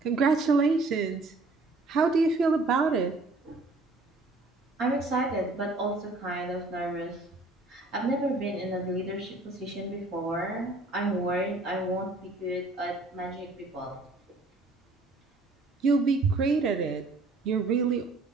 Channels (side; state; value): left; quieter; 3.1 dB